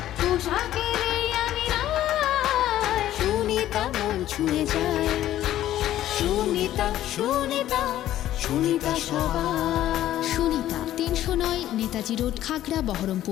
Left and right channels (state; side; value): quieter; right; 12.9 dB